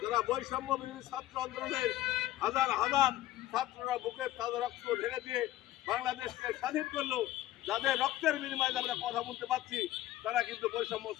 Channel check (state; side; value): quieter; right; 14.6 dB